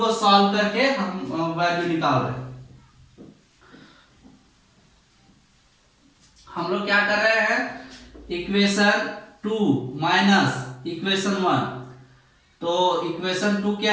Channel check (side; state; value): both; identical; correlation 1.00